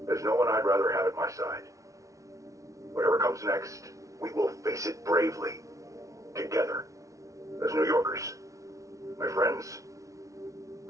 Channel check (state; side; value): late; left; 0.16 ms